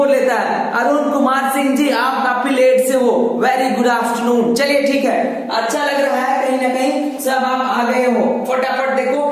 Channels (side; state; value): both; identical; correlation 1.00